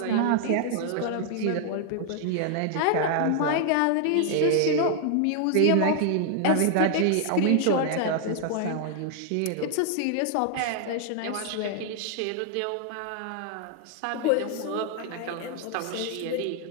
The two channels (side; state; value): both; different; correlation 0.00